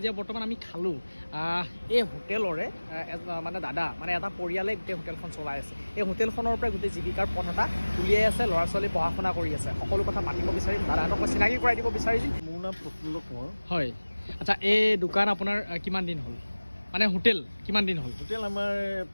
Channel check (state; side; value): inverted; both; correlation -1.00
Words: বৰ্তমান আমি খালোঁ এই হোটেলৰে মানে দাদা মানে এটা পৰিয়ালে গোটেই হোটেলখন চলাই আছে এই হোটেলখনৰ পৰা গোটেই জীৱিকাৰ পথ এটা উলিয়াই আছে ল'ৰা ছোৱালী পঢ়া শুনা কৰি আছে সকলো কথা মাতিব বিচাৰিম দাদাহঁতক মই চিনাকি কৰাই দিব বিচাৰিম মোৰ নাম প্ৰফুল্ল কোঁৱৰ হয় আচ্ছা এই দোকান আপোনাৰ কিমান দিন হ'ল মানে হোটেল কিমান দিন হ'ল হোটেল আমাৰ